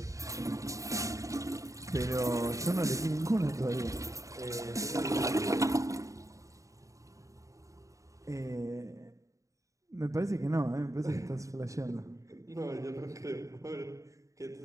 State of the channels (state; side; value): late; left; 0.16 ms